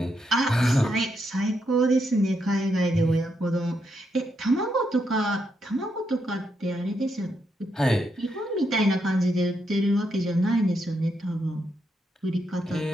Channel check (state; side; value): normal; both; correlation 0.80